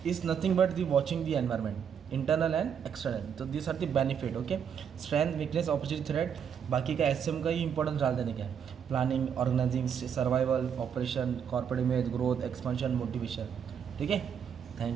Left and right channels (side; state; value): left; quieter; 7.8 dB